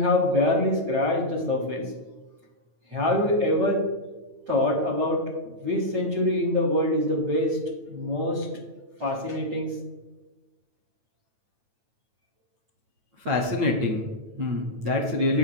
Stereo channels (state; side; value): late; left; 9.1 ms